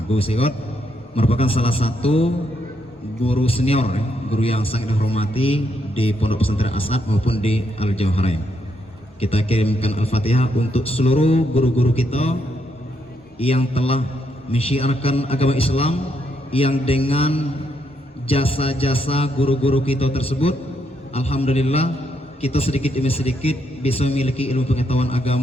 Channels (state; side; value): normal; both; correlation 0.77